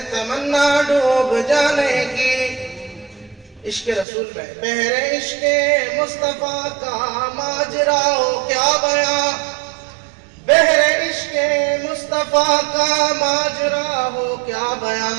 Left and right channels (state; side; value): drops out; left; at 4.0 s